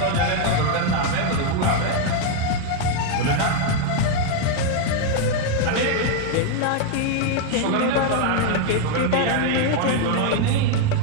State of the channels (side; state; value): both; different; correlation 0.01